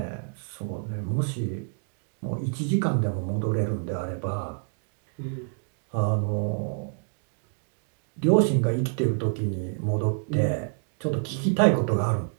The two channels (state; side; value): silent; left; 60 dB below the other